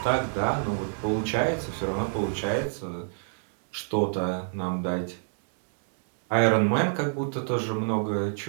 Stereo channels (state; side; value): silent; left; digital silence